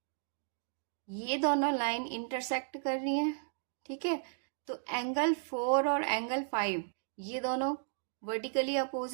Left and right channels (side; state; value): left; silent; digital silence